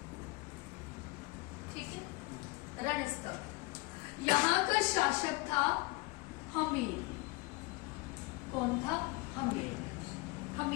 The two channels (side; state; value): right; quieter; 23.7 dB